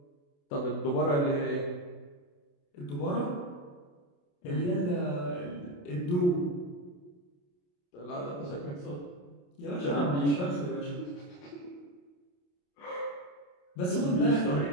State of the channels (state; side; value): late; right; 28 ms